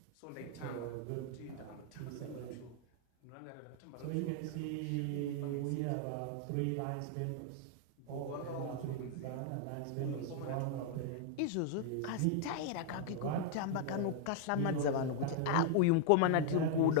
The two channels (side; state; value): both; different; correlation 0.00